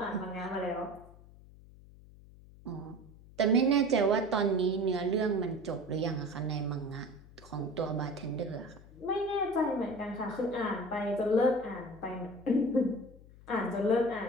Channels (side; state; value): left; noise; hum, 21 dB below the sound